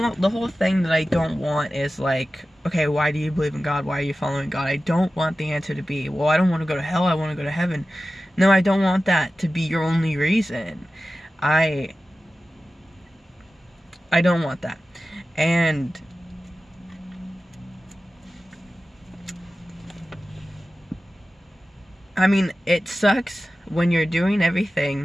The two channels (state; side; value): normal; both; correlation 0.95